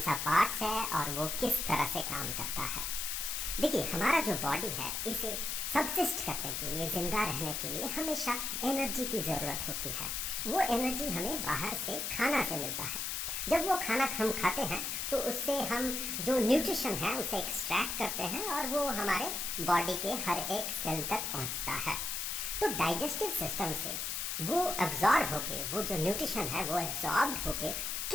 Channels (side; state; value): left; noise; hiss, 2 dB below the sound